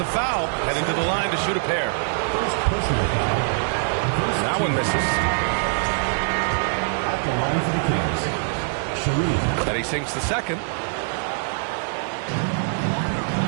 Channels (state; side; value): silent; left; digital silence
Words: foul, heading to the line to shoot a pair. That one misses. At the line for the Kings, Sharif. And he sinks the second.